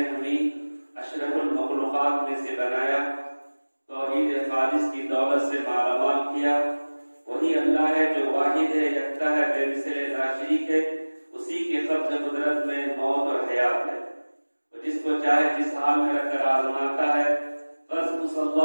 हमें अशरफुल मखलूक़ात में से बनाया, तौहीद खालिस की दौलत से मालामाल किया। वही अल्लाह है जो वाहिद है, यकता है, बेमिसाल नाशरीक है। उसी के क़ब्ज़ कुदरत में मौत और हयात है। वो जिसको चाहे जिस हाल में रखकर आज़माता है। बस उस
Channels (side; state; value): both; inverted; correlation -1.00